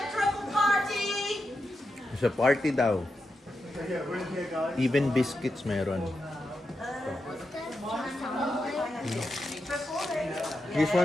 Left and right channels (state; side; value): normal; both; correlation 0.87